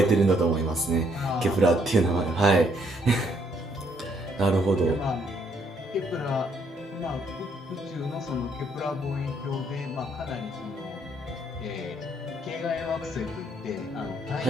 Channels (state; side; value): normal; both; correlation 0.70